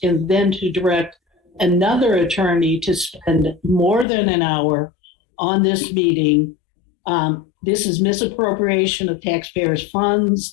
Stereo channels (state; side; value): drops out; right; at 4.0 s